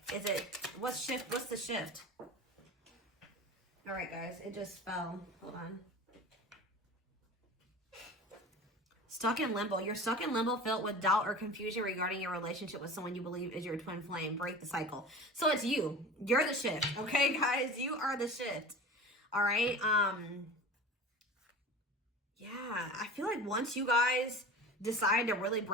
What's the shift? All right, guys. It just fell. Hold on. Stuck in limbo. You're stuck in limbo, filled with doubt or confusion regarding your relationship with someone you believe is your twin flame. Break the cycle. So it's you. You're the shift. Okay, guys? You are the shift. All right? Yeah, I feel like once you guys decide to really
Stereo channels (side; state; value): both; normal; correlation 0.35